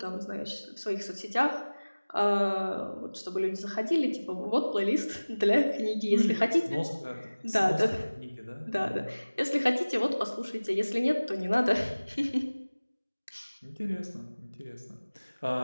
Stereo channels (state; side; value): inverted; both; correlation -1.00